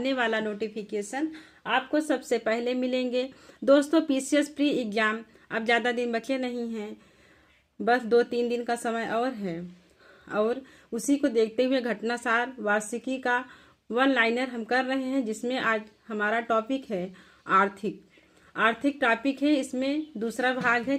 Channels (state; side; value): identical; both; correlation 1.00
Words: वाला नोटिफिकेशन आपको सबसे पहले मिलेंगे। दोस्तों, PCS प्री एग्ज़ाम अब ज़्यादा दिन बचे नहीं हैं, बस 2-3 दिन का समय और है और उसी को देखते हुए घटनासार वार्षिकी का वन लाइनर हम कर रहे हैं, जिसमें आज हमारा टॉपिक है आर्थिक टॉपिक है। इसमें दूसरा भाग है,